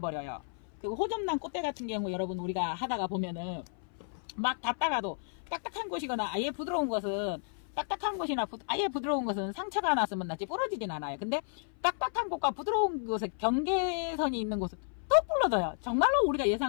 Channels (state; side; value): silent; right; 56 dB below the other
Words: 그 호접란 꽃대 같은 경우 여러분 우리가 하다가 보면은 막 닫다가도 딱딱한 곳이거나 아예 부드러운 것은 딱딱한 곳이나 아예 부드러운 것은 상처가 났으면 낫지 부러지진 않아요. 근데 딱딱한 곳과 부드러운 곳에 경계선이 있는 곳은 톡 부러져요. 정말로 우리가